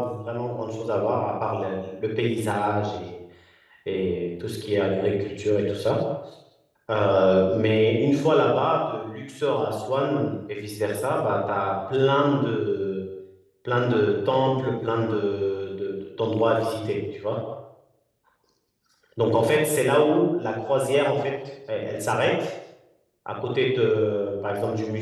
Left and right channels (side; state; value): both; identical; correlation 1.00